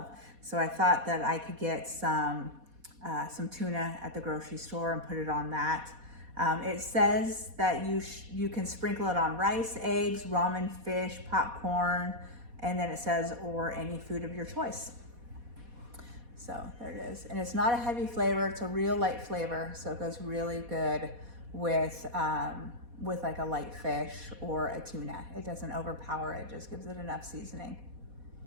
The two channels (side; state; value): left; late; 4.2 ms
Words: So I thought that I could get some tuna at the grocery store and put it on that. It says that you can sprinkle it on rice, eggs, ramen, fish, popcorn, and then it says, or any food of your choice. So there it is. And it's not a heavy flavor, it's a real light flavor. So it goes really good with like a light fish or a tuna. It doesn't overpower it, just gives it enough seasoning.